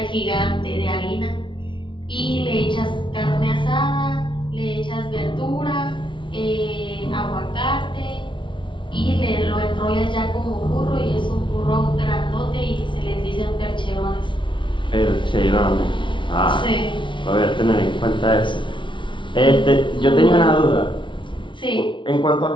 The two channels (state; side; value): late; right; 0.24 ms